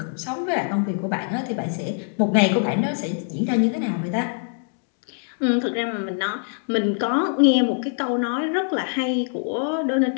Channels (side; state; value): right; silent; digital silence